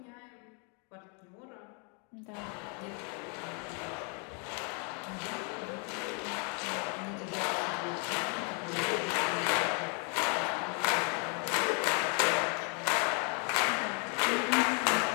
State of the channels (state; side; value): quieter; right; 37.4 dB